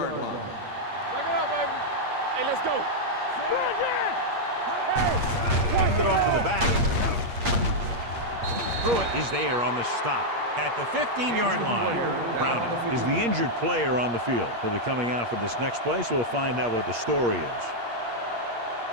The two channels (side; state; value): left; late; 8.5 ms